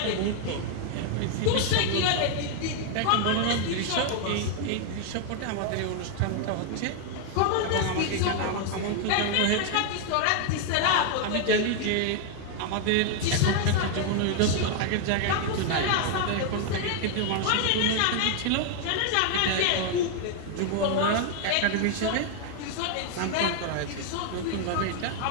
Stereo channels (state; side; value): different; both; correlation 0.00